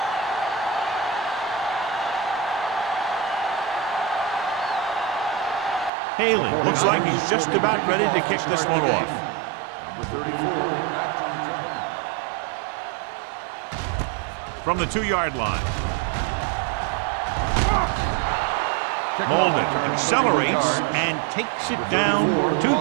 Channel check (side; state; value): left; drops out; at 5.9 s